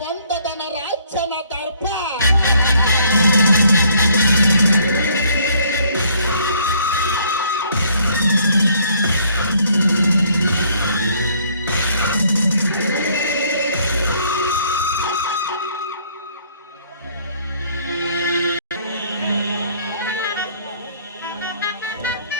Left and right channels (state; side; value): inverted; both; correlation -0.62